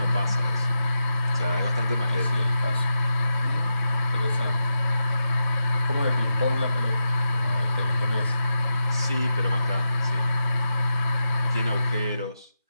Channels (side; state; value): both; inverted; correlation -0.88